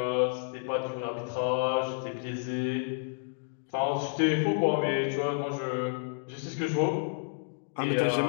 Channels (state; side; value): silent; right; digital silence